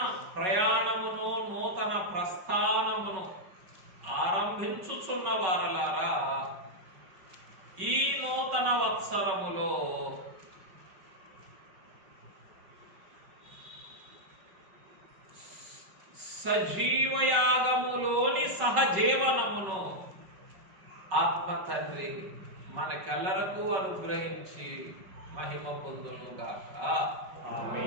ప్రయాణమును నూతన ప్రస్థానమును ఆరంభించుచున్న వారలారా, ఈ నూతన వత్సరములో సజీవయాగములోని సహజీవనమును ఆత్మ తండ్రి మనకెల్లరకు అనుగ్రహించి మహిమ పొందును గాక.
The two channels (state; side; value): late; left; 5.3 ms